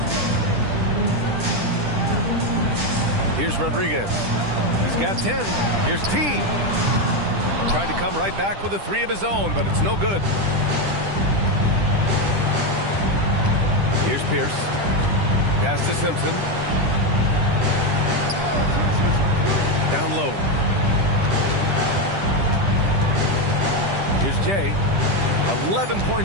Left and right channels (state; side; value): late; left; 10 ms